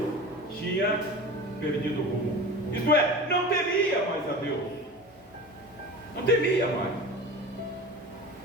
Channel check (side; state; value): both; normal; correlation 0.33